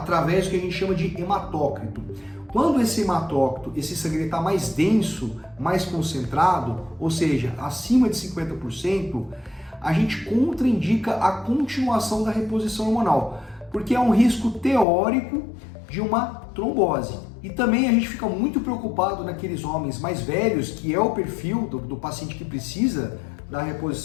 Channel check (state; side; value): drops out; right; at 14.9 s